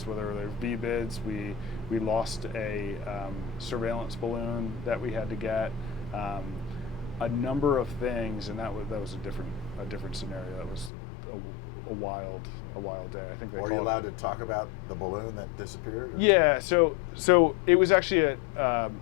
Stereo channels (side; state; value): right; drops out; at 10.9 s